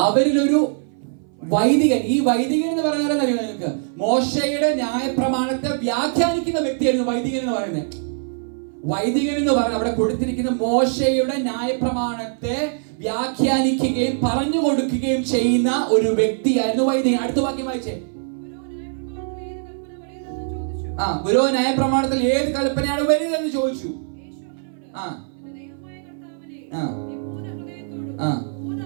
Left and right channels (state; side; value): silent; left; 59 dB below the other